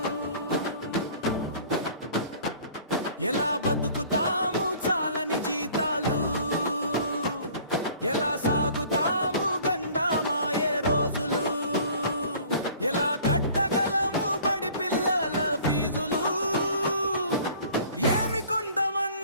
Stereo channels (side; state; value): both; inverted; correlation -0.50